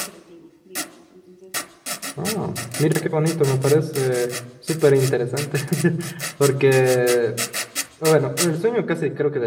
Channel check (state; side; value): identical; both; correlation 1.00